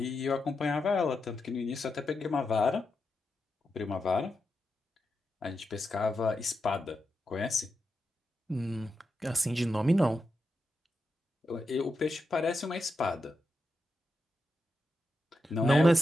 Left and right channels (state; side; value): normal; both; correlation 0.87